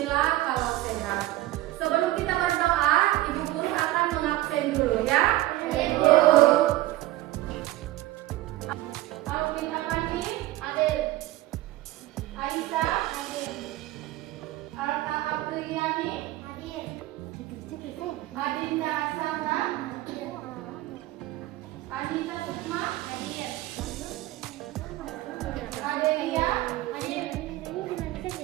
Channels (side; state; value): left; quieter; 16.6 dB